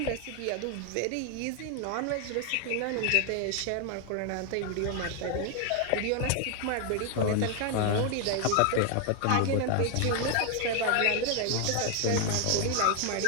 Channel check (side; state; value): both; different; correlation 0.00